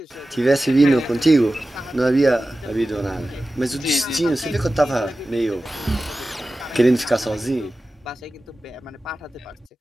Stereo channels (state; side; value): normal; both; correlation 0.95